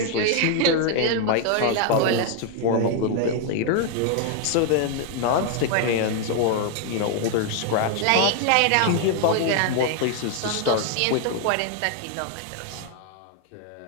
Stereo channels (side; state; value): both; different; correlation 0.00